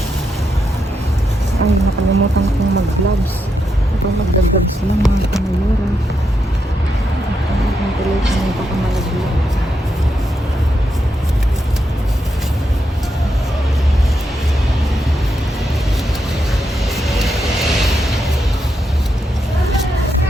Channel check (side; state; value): both; normal; correlation 0.83